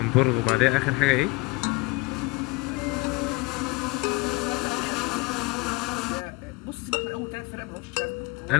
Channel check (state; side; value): quieter; right; 24.0 dB